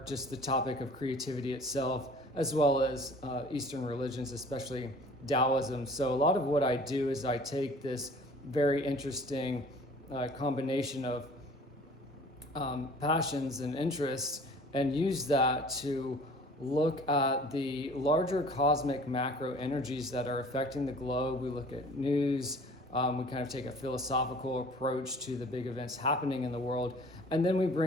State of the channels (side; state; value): both; normal; correlation 0.49